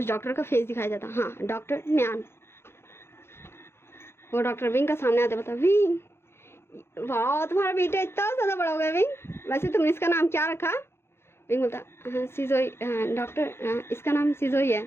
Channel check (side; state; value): right; late; 0.12 ms